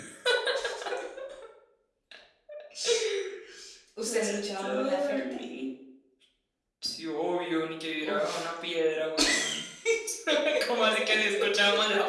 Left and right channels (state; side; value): identical; both; correlation 1.00